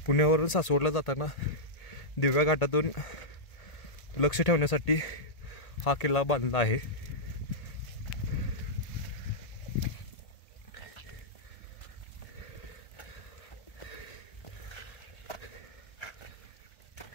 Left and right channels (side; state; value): right; late; 2.0 ms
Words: पुण्यावरून सासवडला जाताना दिव्या घाटातून लक्ष ठेवण्यासाठी हा किल्ला बांधला आहे.